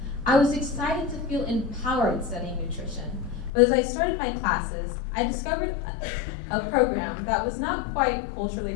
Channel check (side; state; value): right; drops out; at 3.5 s